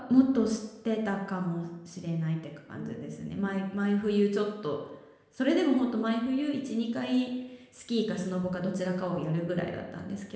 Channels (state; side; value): identical; both; correlation 1.00